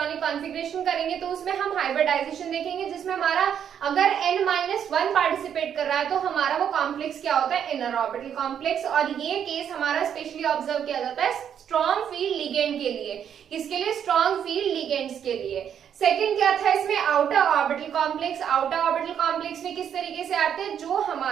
कॉन्फ़िगरेशन करेंगे तो उसमें हम हाइब्रिडाइजेशन देखेंगे, जिसमें हमारा अगर n-1 पार्टिसिपेट कर रहा है तो हमारा वो कॉम्प्लेक्स क्या होता है, इनर ऑर्बिटल कॉम्प्लेक्स। और ये केस हमारा स्पेशली ऑब्जर्व किया जाता है स्ट्रॉन्ग फील्ड लिगेंड के लिए। किसके लिए, स्ट्रॉन्ग फील्ड लिगेंड्स के लिए। सेकंड क्या था इसमें, outer orbital complex. Outer orbital complex में किस तरीके से आते हैं, जो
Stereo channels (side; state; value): left; quieter; 8.7 dB